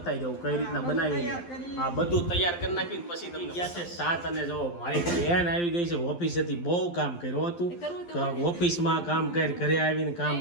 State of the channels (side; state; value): right; late; 12 ms